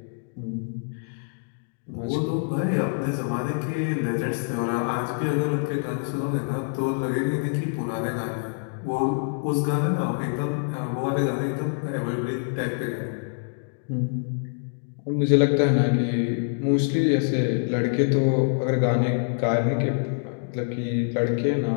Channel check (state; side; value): silent; right; digital silence